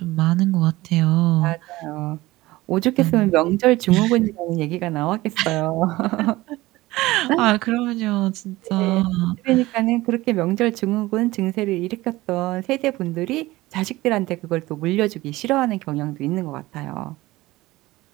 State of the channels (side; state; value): left; quieter; 18.8 dB